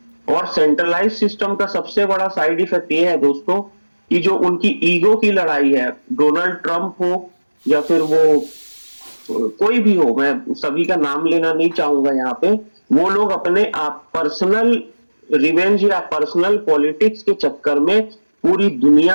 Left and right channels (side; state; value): both; inverted; correlation -1.00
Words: और सेंट्रलाइज सिस्टम का सबसे बड़ा साइड इफेक्ट ये है दोस्तों, कि जो उनकी ईगो की लड़ाई है, डोनाल्ड ट्रंप हो या फिर वो कोई भी हो, मैं सभी का नाम लेना नहीं चाहूंगा यहाँ पे, वो लोग अपने आप पर्सनल रिवेंज या पर्सनल पॉलिटिक्स के चक्कर में पूरी